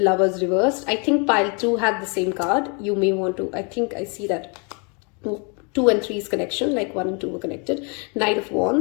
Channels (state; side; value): quieter; right; 34.8 dB